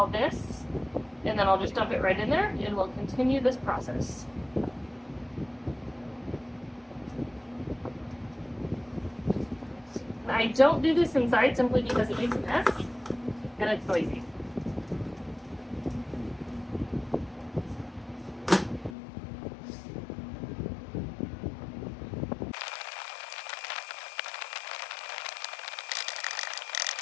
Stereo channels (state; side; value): drops out; right; at 18.9 s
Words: this and then I'll just dump it right in there and we'll continue this process. I don't do this inside simply because it makes a mess and it's noisy.